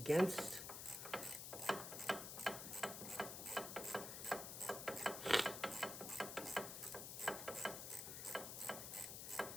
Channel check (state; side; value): noise; left; hiss, 6 dB below the sound